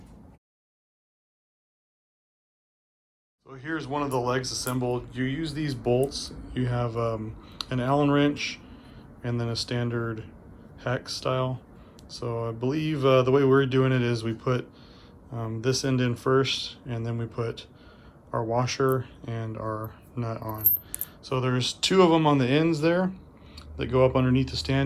So here's one of the legs assembled. You use these bolts. You have an Allen wrench and then a standard hex style. So I believe the way we're doing it is we put this end in first, and then we put our washer and our nut on. So there's 2 of them on the ends there that go up underneath the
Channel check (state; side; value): identical; both; correlation 1.00